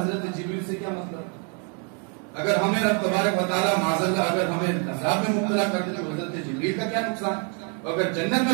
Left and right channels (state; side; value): quieter; left; 38.4 dB